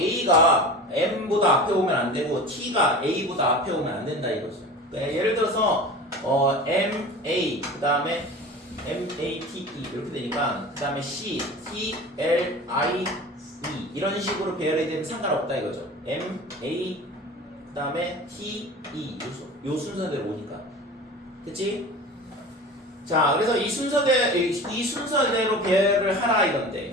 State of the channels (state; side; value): normal; both; correlation 0.35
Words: M보다 앞에 오면 안 되고 T가 A보다 앞에 오면 안 된다 이거죠. 그러니까 예를 들어서 MA 그 다음에 MATE 이렇게 되니까 그 다음에 C, T, L, I, E 이런 식으로 배열이 되면 상관없다 이거죠. MA 그 다음에 T, E 요 순서대로 오니까. 그치? 자, 그래서 이 순서대로 배열을 하라 이건데,